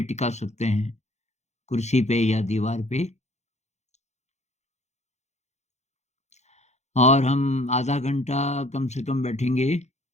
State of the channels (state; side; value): late; right; 0.33 ms